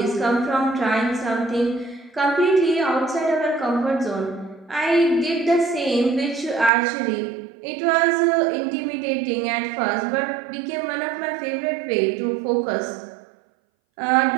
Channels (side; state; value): left; drops out; at 6.7 s